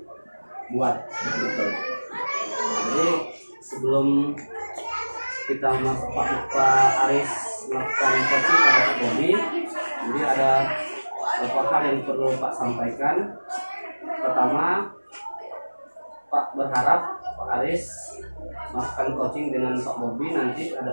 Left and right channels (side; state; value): both; inverted; correlation -1.00